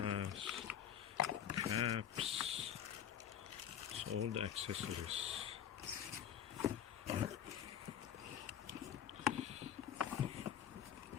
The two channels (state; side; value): quieter; right; 9.5 dB